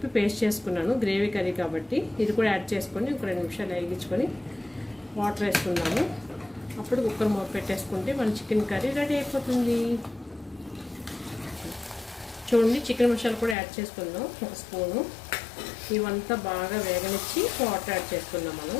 పేస్ట్ చేసుకున్నాను గ్రేవీ కర్రీ కాబట్టి. ఇది కూడా యాడ్ చేసుకొని ఒక 2 నిమిషాలు వేగించుకొని వాటర్ వేసుకున్నాము. అప్పుడు కుక్కర్ మూత పెట్టేసుకుంటే మన చికెన్ కర్రీ రెడీ అయిపోతుంది. చూడండి, చికెన్ మసాలా కూడా యాడ్ చేసుకుందాం 1 స్పూను. ఇవంతా బాగా వేగనిచ్చి వాటర్ యాడ్ చేసుకుందాం మనం.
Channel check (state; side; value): drops out; right; at 13.6 s